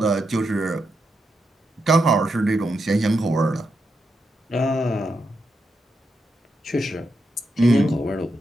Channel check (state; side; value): normal; both; correlation 0.84